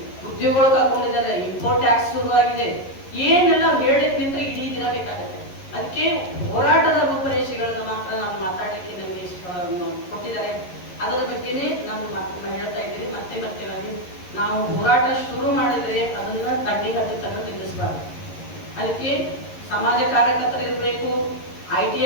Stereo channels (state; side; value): late; right; 11 ms